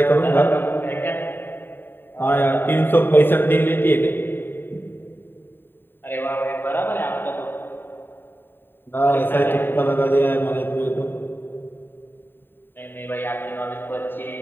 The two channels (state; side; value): late; right; 0.097 ms